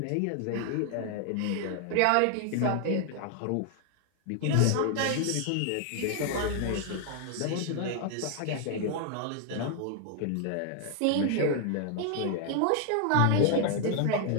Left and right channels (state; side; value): different; both; correlation 0.00